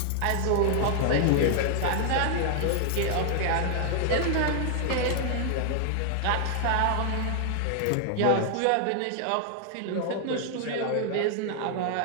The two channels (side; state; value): both; different; correlation 0.00